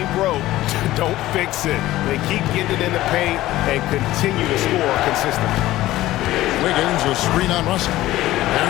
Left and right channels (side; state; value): right; quieter; 15.9 dB